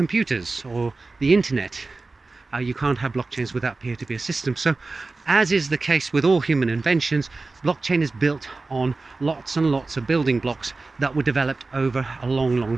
or the internet. You can't have blockchains without peer-to-peer systems. So, as is the case with all human inventions, blockchain is built on lots and lots of building blocks that were developed over a long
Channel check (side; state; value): left; quieter; 3.6 dB